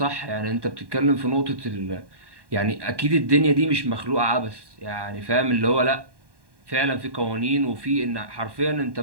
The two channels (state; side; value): late; left; 1.1 ms